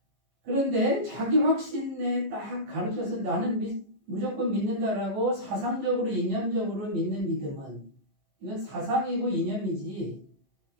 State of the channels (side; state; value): left; late; 15 ms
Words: 그런데 자기 확신에 딱 가르쳐서 나는 무조건 믿는다라고 사상적으로 이념적으로 믿는 믿음은 이건 사상이고 이념이지